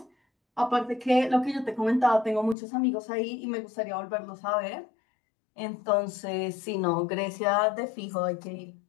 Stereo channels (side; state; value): right; drops out; at 2.6 s